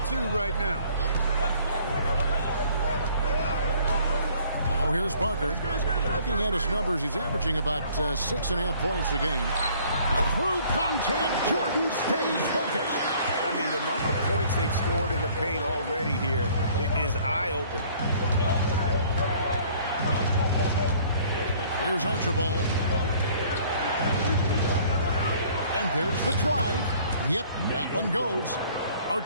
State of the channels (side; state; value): both; inverted; correlation -0.56